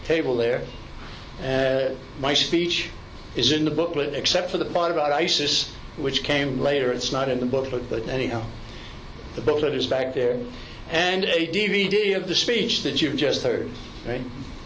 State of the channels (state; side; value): identical; both; correlation 1.00